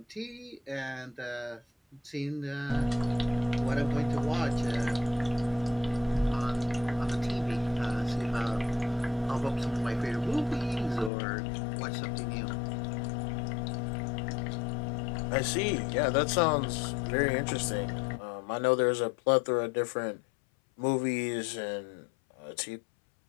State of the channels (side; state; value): right; drops out; at 11.1 s